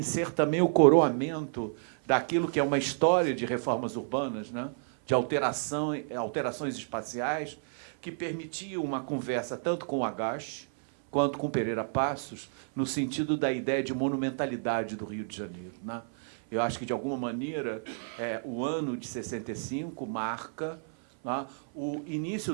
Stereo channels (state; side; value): silent; left; 57 dB below the other